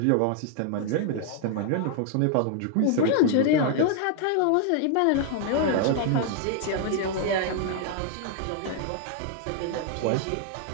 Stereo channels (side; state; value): both; different; correlation 0.00